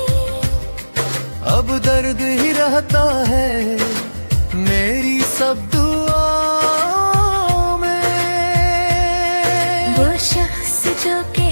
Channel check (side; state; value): both; inverted; correlation -1.00